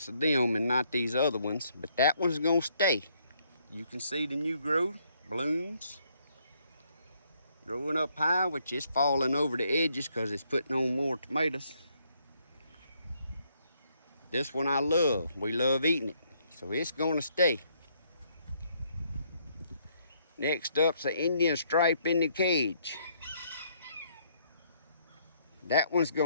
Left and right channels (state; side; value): inverted; both; correlation -0.70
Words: of them and not these other ones, but that one's gonna stay. You can see the new growth, blooms, growing up high, which is falling over the edges because it's putting on more tomatoes. This one I love. We love eating it, so it's gonna stay. Next up's the Indian stripe in the cage. That one's